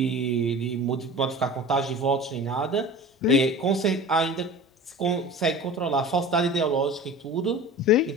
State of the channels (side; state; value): both; normal; correlation 0.37